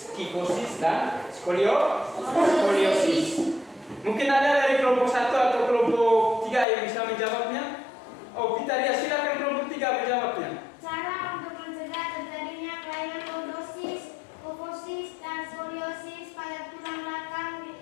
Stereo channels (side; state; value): right; drops out; at 6.7 s